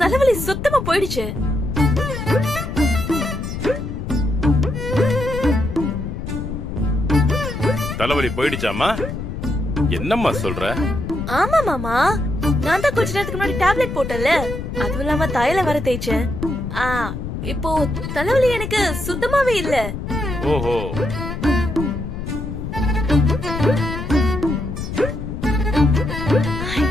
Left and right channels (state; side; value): noise; left; rumble, 6 dB below the sound